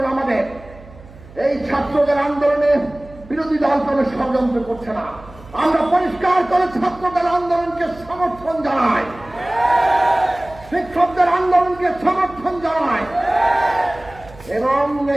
আমাদের। এই ছাত্রদের আন্দোলনে বিরোধী দল কোনো ষড়যন্ত্র করছে না। আমরা পরিষ্কার করে ছাত্রদের আন্দোলনকে সমর্থন জানাই, শিক্ষকদের আন্দোলনকে সমর্থন জানাই এবং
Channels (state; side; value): noise; right; hum, 20 dB below the sound